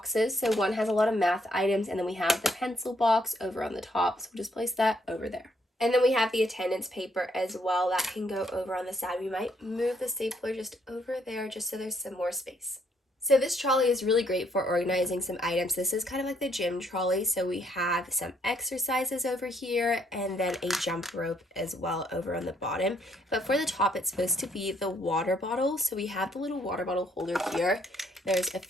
So one has a lot of math items, and then we have the pencil box over on the top. So we'll just place that over there. And then we have the attendance paper as well. That can go over on the side. We might move the stapler just over there just so there's some more space. So this trolley is really great for organizing some items. This is kind of like the gym trolley. So we have some exercises over here and then a jump rope as well over on the bottom. But for the top, it's supposed to be the water bottle. So we have the little water bottle holder here. There's a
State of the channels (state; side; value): normal; both; correlation 0.71